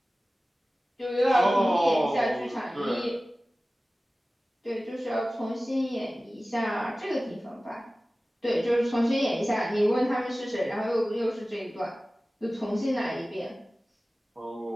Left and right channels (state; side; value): normal; both; correlation 0.97